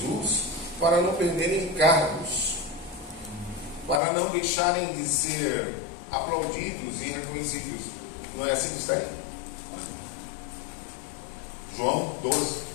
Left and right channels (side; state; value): right; drops out; at 4.0 s